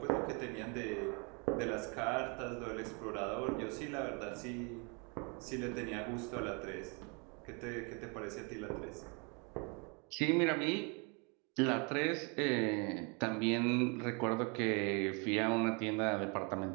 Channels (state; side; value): quieter; left; 33.0 dB